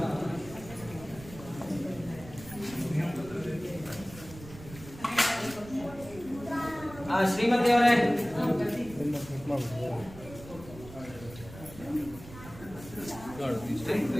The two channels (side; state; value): right; noise; rumble, 16 dB below the sound